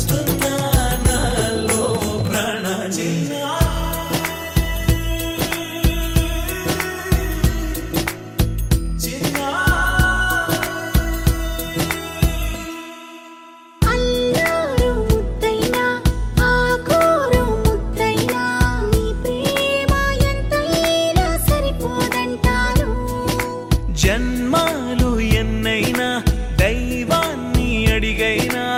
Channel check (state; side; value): identical; both; correlation 1.00